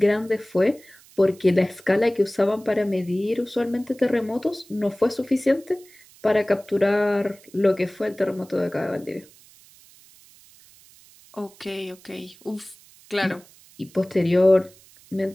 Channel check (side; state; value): right; noise; hiss, 26 dB below the sound